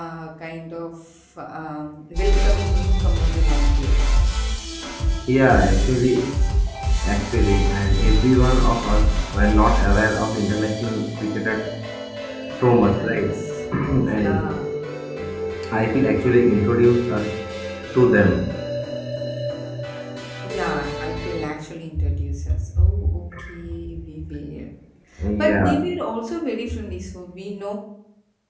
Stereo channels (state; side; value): identical; both; correlation 1.00